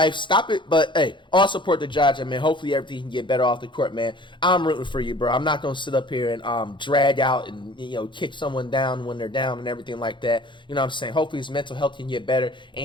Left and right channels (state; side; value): late; right; 0.23 ms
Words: Stop it. But, hey, all support to Ja, man. Hopefully everything can get better off the court, man. I'm rooting for you, bro. I'm not going to sit up here and drag out and, you know, kick someone down when they're down and everything like that. You know what I'm saying? Hopefully his mental health can get better and